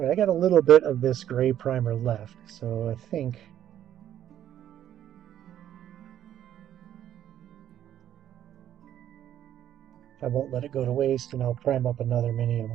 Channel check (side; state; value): left; quieter; 11.0 dB